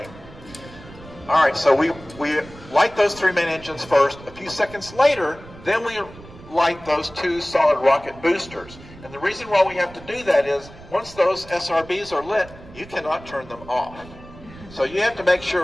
All right, so we light those 3 main engines first. A few seconds later, then we light those 2 solid rocket boosters. And the reason why we have to do that is once those SRBs are lit, you cannot turn them off. So you have to make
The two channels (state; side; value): noise; right; rumble, 19 dB below the sound